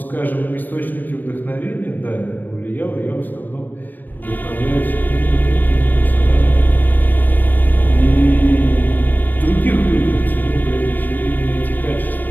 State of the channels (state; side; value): late; right; 0.090 ms